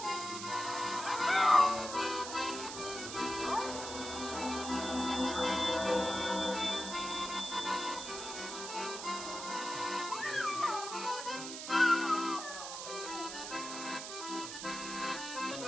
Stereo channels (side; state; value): right; noise; hiss, 7 dB below the sound